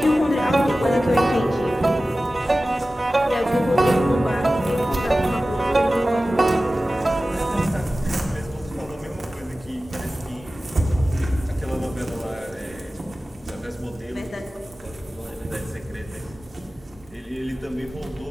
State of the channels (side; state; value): both; normal; correlation 0.96